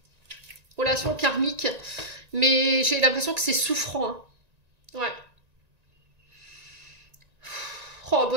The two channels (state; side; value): late; left; 1.9 ms